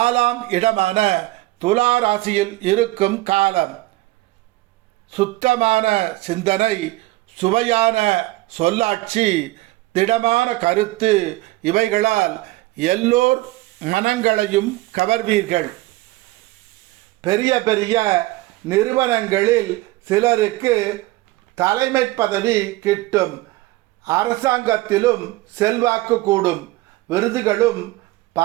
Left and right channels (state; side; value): quieter; left; 19.0 dB